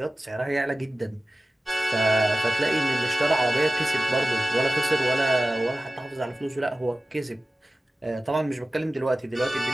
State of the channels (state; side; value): normal; both; correlation 0.96